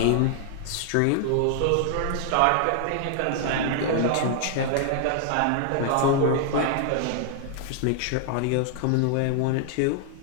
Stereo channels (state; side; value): different; both; correlation 0.00